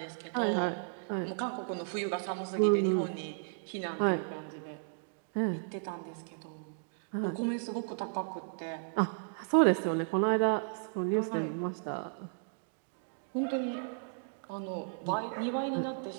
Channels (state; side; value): silent; left; digital silence